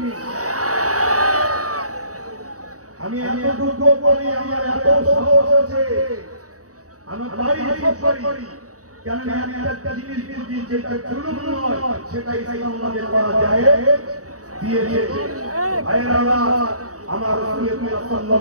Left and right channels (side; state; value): left; late; 0.66 ms